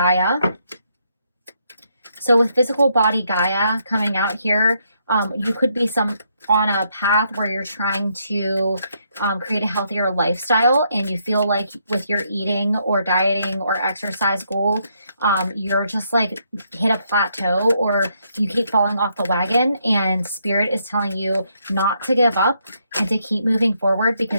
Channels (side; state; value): both; inverted; correlation -0.75